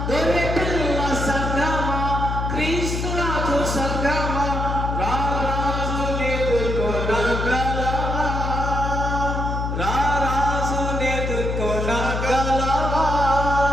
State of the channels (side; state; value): left; noise; hum, 2 dB below the sound